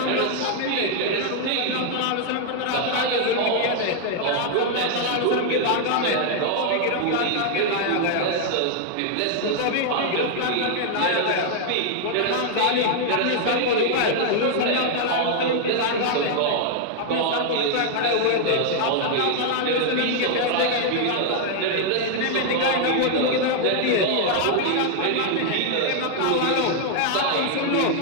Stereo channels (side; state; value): both; different; correlation 0.00